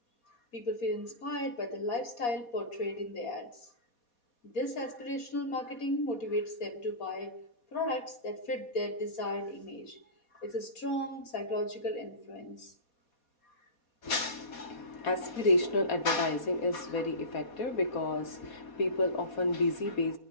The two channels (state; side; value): late; right; 4.2 ms